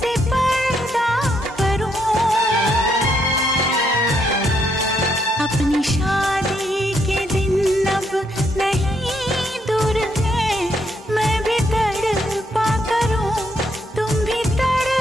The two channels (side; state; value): both; normal; correlation 0.75